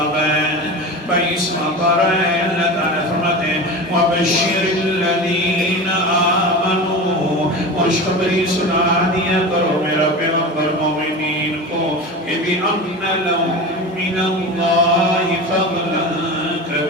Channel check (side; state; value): both; normal; correlation 0.29